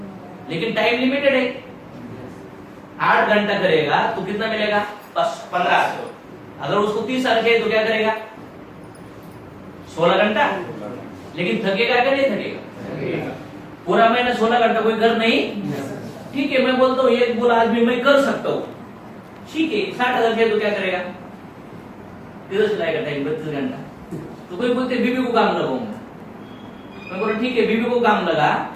लेकिन टाइम लिमिटेड है। 8 घंटा करेगा तो कितना मिलेगा? 1500। अगर उसको 30 साल चाहिए तो क्या करेगा? 16 घंटा। लेकिन थकेगा क्या? नहीं थकेगा। पूरा महीना 16 घंटा कोई कर नहीं। ठीक है, मैं बोलता हूँ एक बोला आज भी मैं कर सकता हूँ, ठीक है, 60,000 चाहिए तो क्या करेगा? किधर चलाएगा टाइम? 32 घंटा। तो कोई बोलते बीबी को काम लगाऊंगा, मैं बोला ठीक है बीबी को काम लगा,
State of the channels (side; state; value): both; identical; correlation 1.00